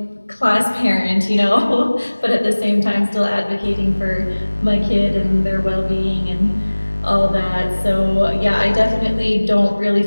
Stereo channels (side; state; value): both; inverted; correlation -1.00